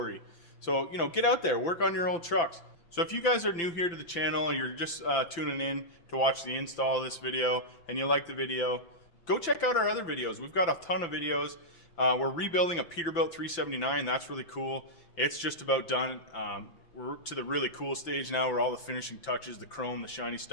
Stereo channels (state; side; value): late; right; 5.9 ms